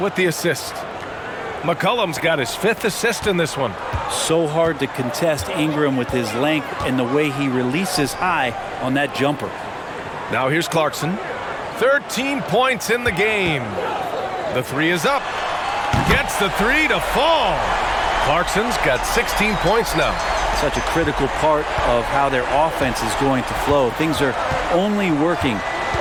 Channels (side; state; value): both; identical; correlation 1.00